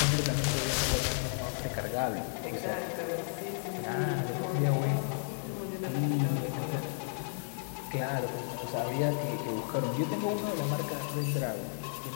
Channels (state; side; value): silent; right; digital silence